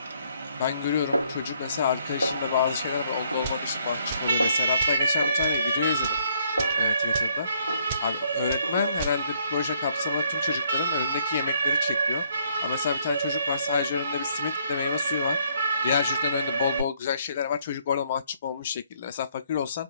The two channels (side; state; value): both; inverted; correlation -0.68